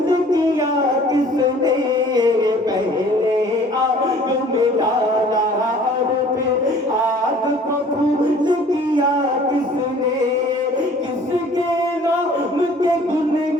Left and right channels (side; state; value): both; normal; correlation 0.52